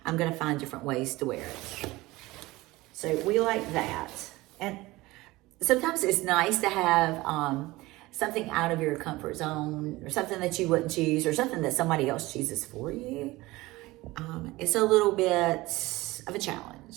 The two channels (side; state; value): left; quieter; 19.9 dB